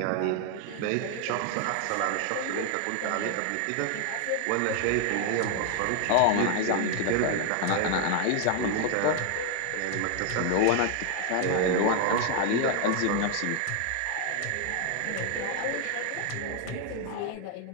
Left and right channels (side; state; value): both; different; correlation 0.00